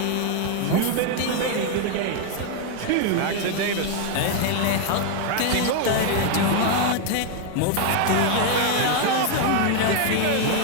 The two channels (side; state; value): both; different; correlation 0.00